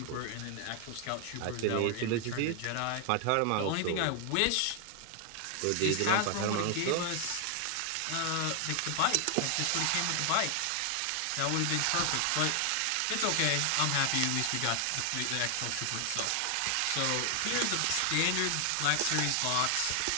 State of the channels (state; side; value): different; both; correlation 0.00